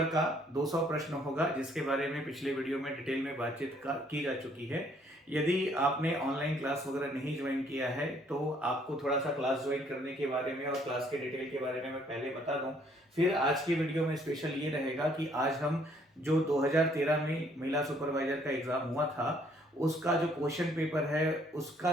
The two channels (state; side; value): normal; both; correlation 0.64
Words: का 200 प्रश्न होगा, जिसके बारे में पिछले वीडियो में डिटेल में बातचीत की जा चुकी है। यदि आपने ऑनलाइन क्लास वगैरह नहीं ज्वाइन किया है तो आपको थोड़ा सा क्लास ज्वाइन करने के बारे में और क्लास के डिटेल के बारे में मैं पहले बता दूं। फिर आज की वीडियो में स्पेशल ये रहेगा कि आज हम जो 2013 में महिला सुपरवाइजर का एग्जाम हुआ था, उसका जो क्वेश्चन पेपर है, उसका